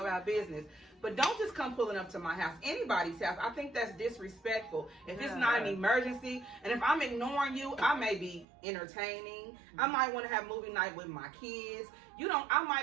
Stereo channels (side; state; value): left; drops out; at 8.5 s